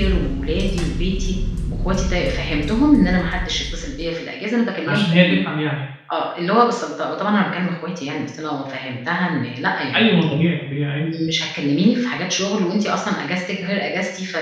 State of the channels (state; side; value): identical; both; correlation 1.00